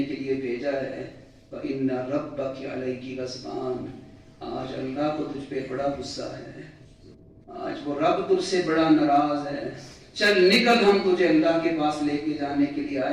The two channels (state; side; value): identical; both; correlation 1.00